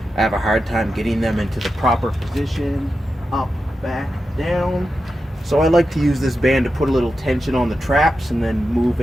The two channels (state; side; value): normal; both; correlation 0.90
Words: I have a hard time getting them into the proper position, up, back, down. So I like to use this band to put a little tension on the traps and then move